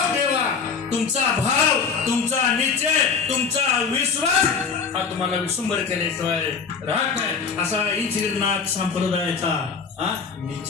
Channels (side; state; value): right; quieter; 5.6 dB